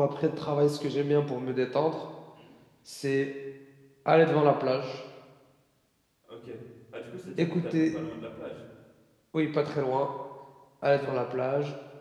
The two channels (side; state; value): both; identical; correlation 1.00